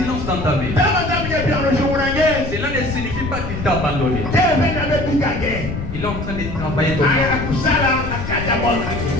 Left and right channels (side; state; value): left; noise; rumble, 6 dB below the sound